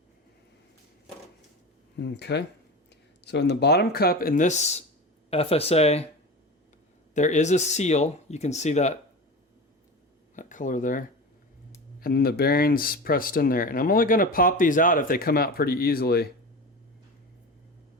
Okay. So in the bottom cup in this FSA, there is a seal. You can see that that color there. And then the bearings pressed in there. And I'm only going to pop these out if they come out pretty easily.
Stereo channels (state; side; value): normal; both; correlation 0.29